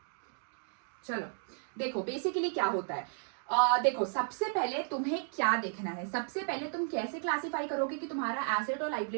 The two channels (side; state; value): left; silent; digital silence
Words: चलो देखो बेसिकली क्या होता है। देखो सबसे पहले तुम्हें क्या देखना है, सबसे पहले तुम कैसे क्लासिफाई करोगे कि तुम्हारा एसेट और